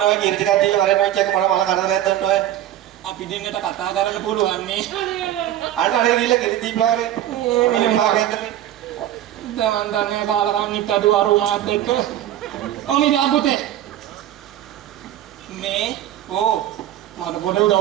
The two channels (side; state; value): left; quieter; 12.4 dB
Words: ඔය කිරි ටිකක් දීලා වරෙන් ඔය චෙක් මල කරදරයක් දෙන්න ඔය අපි දෙන්නට කතා කරන්න පුළුවන් නේ අන්න අර ගිහලා කිරි දීපලා වරේ මෙලි මාගෙන්ද දැන් දන්නේ කාලකන්නිත් අද වරුණාත් එක්ක ඔනි දාපුතේ මේ මට පොඩ